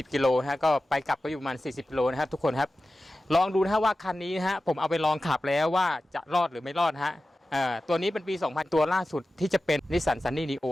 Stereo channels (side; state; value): both; normal; correlation 0.94